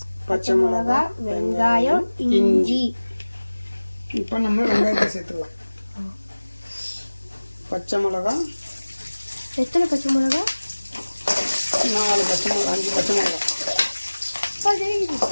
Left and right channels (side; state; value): both; inverted; correlation -1.00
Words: பச்சை மிளகா, வெங்காயம், இஞ்சி. இப்போ நம்ம வெங்காயத்தை சேர்த்துக்கலாம். பச்சை மிளகா, எத்தனை பச்சை மிளகா? 4 பச்சை மிளகா, 5 பச்சை மிளகா.